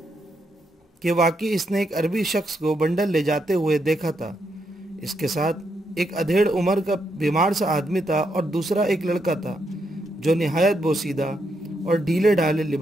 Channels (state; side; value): normal; both; correlation 0.79